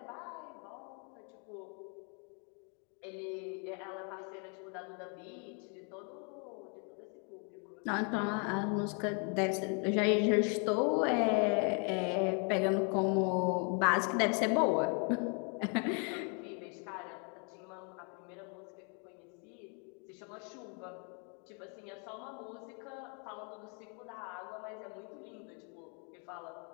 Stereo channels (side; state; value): right; quieter; 38.0 dB